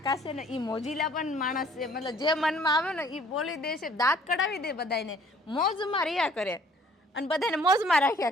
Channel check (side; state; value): both; normal; correlation 0.57